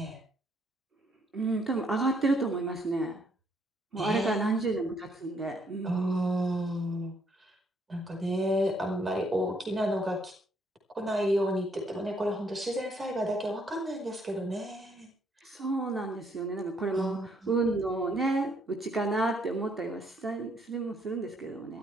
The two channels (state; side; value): normal; both; correlation 0.70